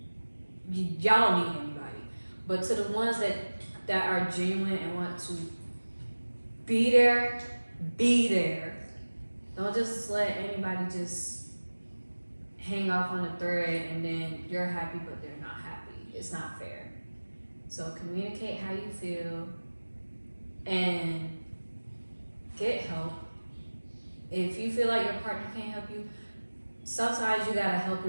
Y'all don't need anybody. But to the ones that are genuine and want to be there, be there. Don't just let anybody just hang off on a thread and then you're happy but they're not happy. It's not fair. So communicate how you feel and get help. If you feel like your partner can't help you, sometimes you gotta help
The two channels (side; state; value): both; inverted; correlation -1.00